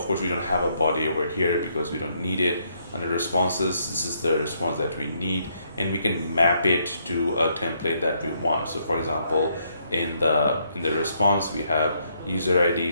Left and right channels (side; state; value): both; inverted; correlation -0.73